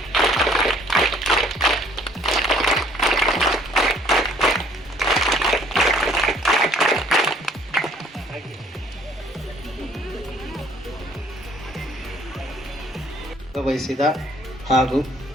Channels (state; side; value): normal; both; correlation 0.59